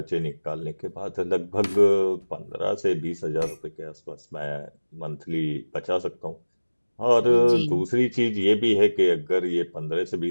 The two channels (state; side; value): inverted; both; correlation -1.00